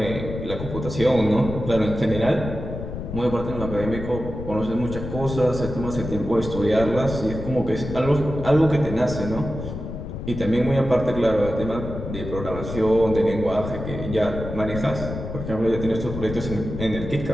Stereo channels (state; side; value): noise; left; rumble, 7 dB below the sound